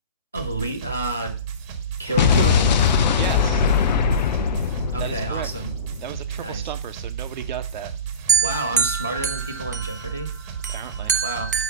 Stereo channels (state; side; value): inverted; both; correlation -0.31